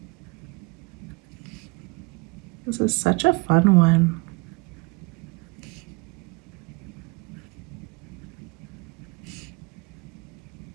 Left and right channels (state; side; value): quieter; left; 27.8 dB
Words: This is such a fun one.